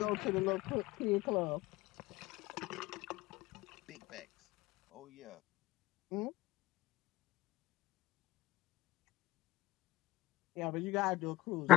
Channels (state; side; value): quieter; right; 17.3 dB